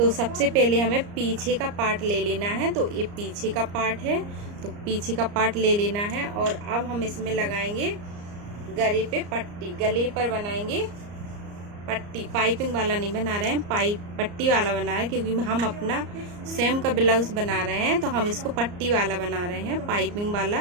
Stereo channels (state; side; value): late; left; 34 ms